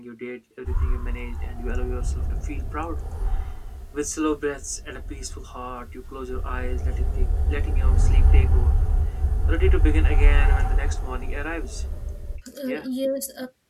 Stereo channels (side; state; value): both; identical; correlation 1.00